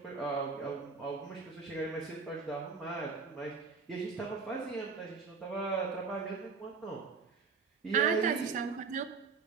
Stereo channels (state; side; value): quieter; left; 5.0 dB